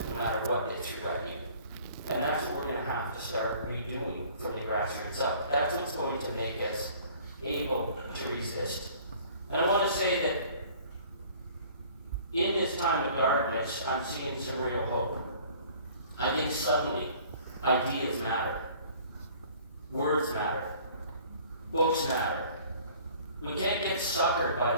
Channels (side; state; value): both; inverted; correlation -0.52